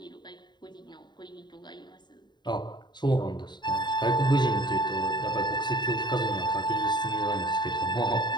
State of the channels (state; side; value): late; right; 0.21 ms